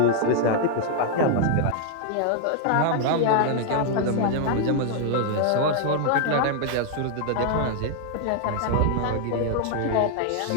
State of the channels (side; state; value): both; different; correlation -0.01